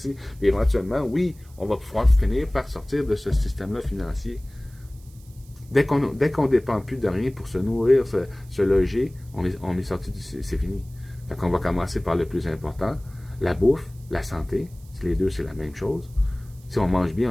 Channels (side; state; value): right; noise; hiss, 27 dB below the sound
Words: Puis éventuellement, oui, on va pouvoir finir par sortir de ce système-là financier. Dès qu'on ne dépend plus de rien pour se nourrir, se loger, on est sorti c'est fini. Fait qu'on va commencer par le plus important, la bouffe, la santé. Les deux, c'est la même chose. Si on mange bien,